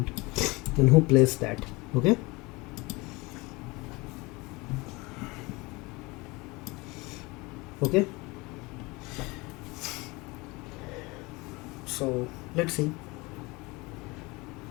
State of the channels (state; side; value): quieter; right; 24.4 dB